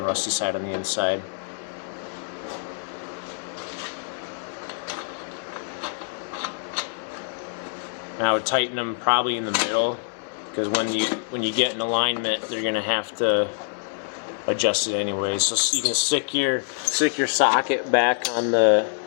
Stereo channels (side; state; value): right; silent; 62 dB below the other